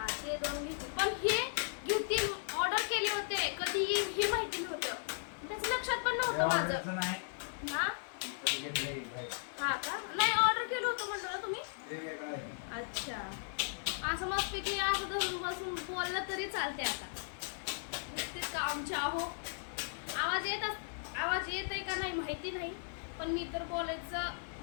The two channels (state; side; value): silent; right; digital silence